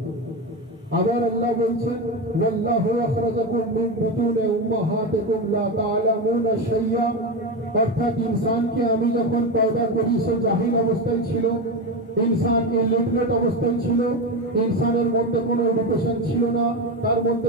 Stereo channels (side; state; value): both; normal; correlation 0.17